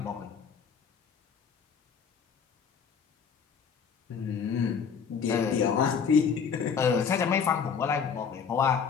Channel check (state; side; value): quieter; right; 6.5 dB